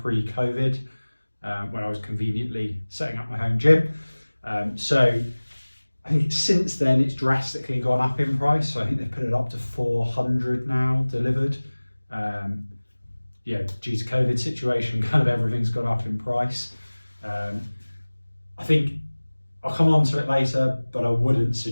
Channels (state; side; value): inverted; both; correlation -1.00